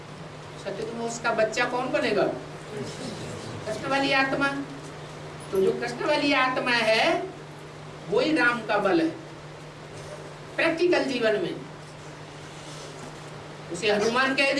सत्य में उसका बच्चा कौन बनेगा? कृष्ण वाली आत्मा। तो जो कृष्ण वाली आत्मा है वही राम का बल है प्रैक्टिकल जीवन में। उसे हनुमान कह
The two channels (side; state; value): both; identical; correlation 1.00